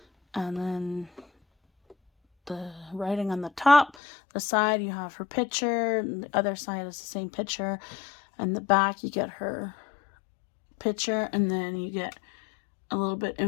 and then the writing on the top. The side, you have her picture, and the other side is the same picture. And the back, you get her picture, and then you get a little bit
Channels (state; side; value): drops out; right; at 4.0 s